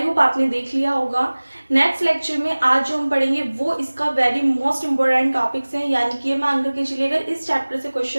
होप आपने देख लिया होगा। नेक्स्ट लेक्चर में आज जो हम पढ़ेंगे वो इसका वेरी मोस्ट इंपॉर्टेंट टॉपिक्स हैं, यानी कि मान करके चलिए अगर इस चैप्टर से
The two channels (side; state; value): both; inverted; correlation -1.00